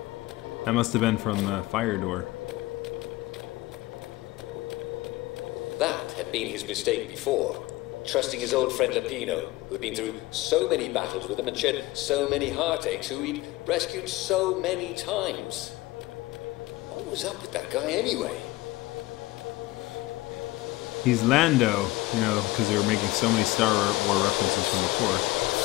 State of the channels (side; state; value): right; quieter; 19.4 dB